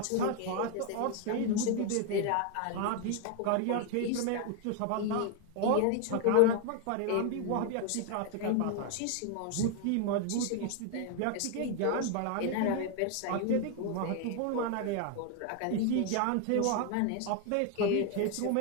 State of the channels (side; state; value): both; different; correlation 0.01